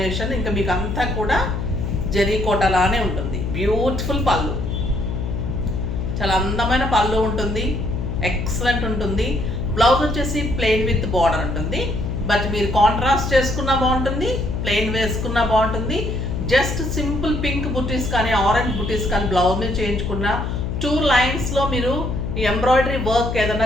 ఇంకా మీకు అంతా కూడా జరీ కోటలానే ఉంటుంది. బ్యూటిఫుల్ పళ్ళు, చాలా అందమైన పళ్ళు ఉంటుంది, ఎక్సలెంట్ ఉంటుంది. బ్లౌజ్ వచ్చేసి ప్లెయిన్ విత్ బార్డర్ ఉంటుంది, బట్ మీరు కాంట్రాస్ట్ చేసుకున్నా బాగుంటుంది, ప్లెయిన్ వేసుకున్నా బాగుంటుంది. జస్ట్ సింపుల్ పింక్ బుటీస్ కానీ ఆరెంజ్ బుటీస్ కానీ బ్లౌజ్ మీద చేయించుకున్న 2 లైన్స్లో మీరు ఎంబ్రాయిడరీ వర్క్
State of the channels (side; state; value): left; noise; hum, 3 dB below the sound